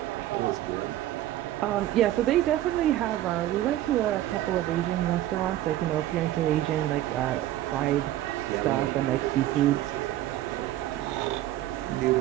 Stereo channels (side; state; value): left; quieter; 13.9 dB